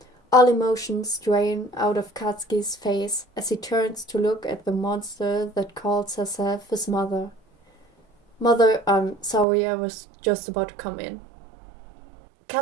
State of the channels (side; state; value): left; drops out; at 9.5 s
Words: All emotions drain out of Katsuki's face as he turns to look at the monster that calls herself his mother. Mother, I'm sorry, I was just about to come in.